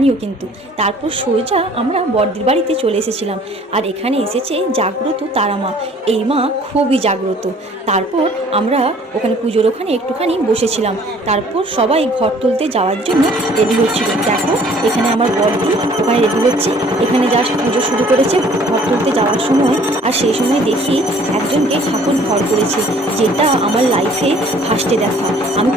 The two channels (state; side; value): normal; both; correlation 0.55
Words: কিন্তু। তারপর সোজা আমরা বড়দির বাড়িতে চলে এসেছিলাম। আর এখানে এসেছে জাগ্রত তারা মা। এই মা খুবই জাগ্রত। তারপর আমরা ওখানে পুজোর ওখানে একটুখানি বসেছিলাম। তারপর সবাই ঘর তুলতে যাওয়ার জন্য রেডি হচ্ছিল। দেখো এখানে আমার বরদি ওখানে রেডি হচ্ছে। এখানে জাস্ট পুজো শুরু করেছে ঘর তুলতে যাওয়ার সময়। আর সেই সময় দেখি একজনকে ঠাকুর ঘর করেছে, যেটা আমার লাইফে ফার্স্টে দেখা। আমি